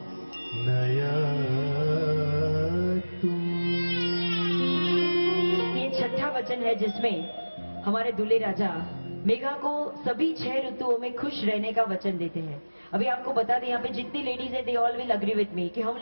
नयतु. ये 6ठा वचन है जिसमें हमारे दूल्हे राजा मेघा को सभी 6 ऋतुओं में खुश रहने का वचन देते हैं. अभी आपको बता दें, यहाँ पे जितनी लेडीज है, they all will agree with me कि हम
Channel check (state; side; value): inverted; both; correlation -1.00